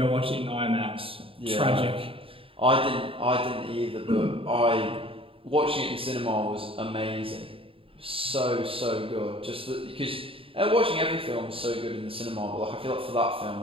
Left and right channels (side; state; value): left; late; 0.27 ms